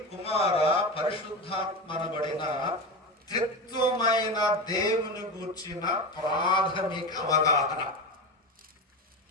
కుమార, పరిశుద్ధాత్మనబడిన త్రిత్వమైన దేవుని గూర్చిన ప్రాథమిక అవగాహన.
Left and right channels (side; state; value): both; normal; correlation 0.22